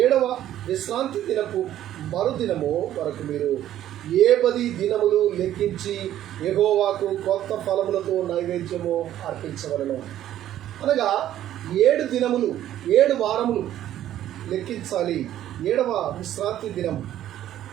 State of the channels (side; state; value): left; quieter; 12.2 dB